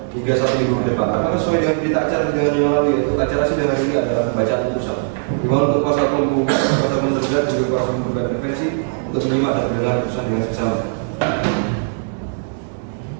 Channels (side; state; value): left; silent; 65 dB below the other